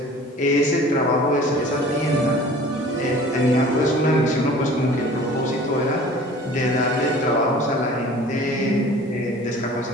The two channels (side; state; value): both; normal; correlation 0.46